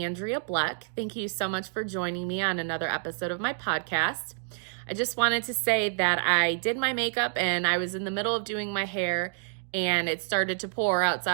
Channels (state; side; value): silent; left; digital silence